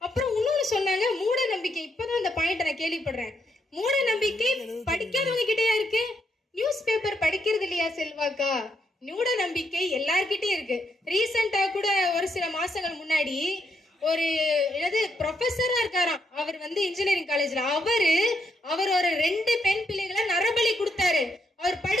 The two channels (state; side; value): normal; both; correlation 0.78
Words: அப்புறம் இன்னொன்னு சொன்னாங்க, மூட நம்பிக்கை. இப்பதான் அந்த பாயிண்ட் நான் கேள்விப்படுறேன். மூட நம்பிக்கை படிக்காதவங்க கிட்டயா இருக்கு? நியூஸ் பேப்பர் படிக்கிறது இல்லையா செல்வாக்கா? மூட நம்பிக்கை எல்லார்கிட்டயும் இருக்கு. ரீசெண்டா கூட ஒரு சில மாசங்கள் முன்னாடி ஒரு ப்ரொஃபஸரா இருக்காராம். அவர் இன்ஜினியரிங் காலேஜ்ல அவர் ஒரு 2 பெண் பிள்ளைகளை நரபலி கொடுத்தாரு. அவர்